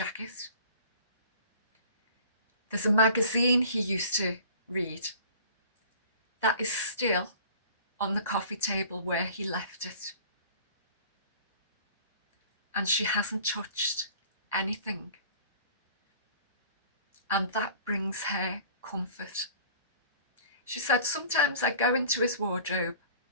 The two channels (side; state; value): both; inverted; correlation -0.46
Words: There's a magazine he used to read that is still on the coffee table where he left it. And she hasn't touched anything. And that brings her comfort. She said, sometimes I go into his wardrobe